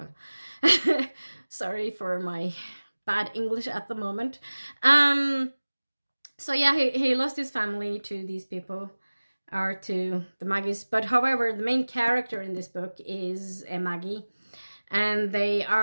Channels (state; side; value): inverted; both; correlation -1.00